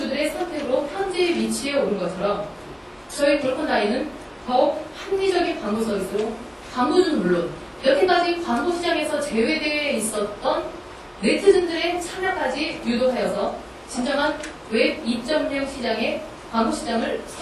선택으로 현재 위치에 오른 것처럼 저희 골컨다이는 더욱 합리적인 광고 서비스로 광고주는 물론 여태까지 광고 시장에서 제외되어 있었던 네티즌들의 참여까지 유도하여서 진정한 웹 2.0 시장의 광고 시장을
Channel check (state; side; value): identical; both; correlation 1.00